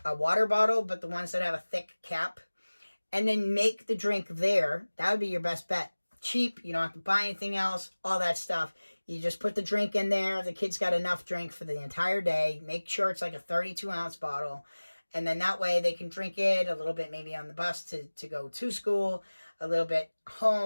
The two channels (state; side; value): inverted; both; correlation -1.00